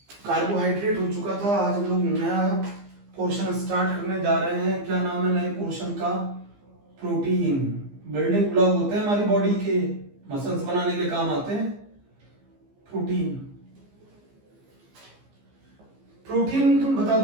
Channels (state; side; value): late; left; 15 ms